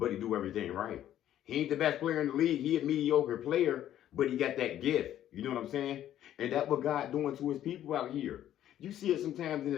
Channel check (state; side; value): quieter; right; 11.7 dB